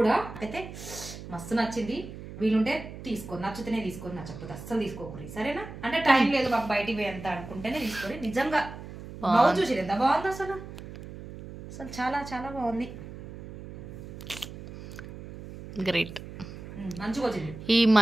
అయితే మస్తు నచ్చింది. వీలుంటే తీసుకో, నచ్చితేనే తీసుకొని, నచ్చకపోతే అస్సలు తీసుకోకూడదు సరేనా. అంటే టైం లేదు మాకు బయటికి పోయి ఎంత అనుకుంటేనే తీసుకోండి. నిజంగా బ్లౌజ్ చూసి ఎంత బాగుంది అసలు, అసలు చాలా చాలా బాగుంది. గ్రేట్, మంచిగా వచ్చింది. ఈ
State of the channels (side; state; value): right; noise; hum, 12 dB below the sound